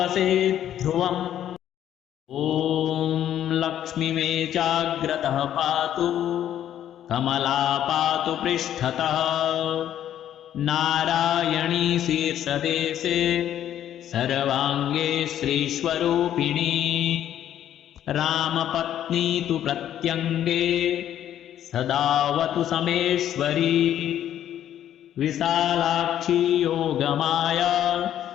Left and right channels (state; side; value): quieter; right; 11.0 dB